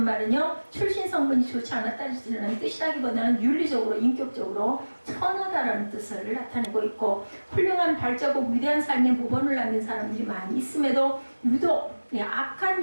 말은요 출신 성분이 좋지 않았다는 뜻이라기보다는 윤리적으로 인격적으로 천하다라는 뜻을 나타내고 있고, 훌륭한 발자국 위대한 삶의 모범을 남긴 사람들이 많이 있음에도 유독 악한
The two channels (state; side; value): inverted; both; correlation -1.00